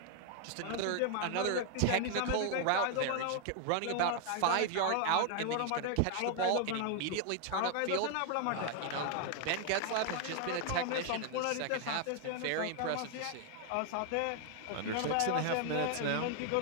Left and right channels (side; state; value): both; different; correlation 0.00